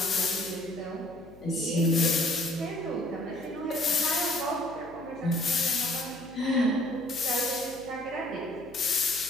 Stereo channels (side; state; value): left; noise; hum, 22 dB below the sound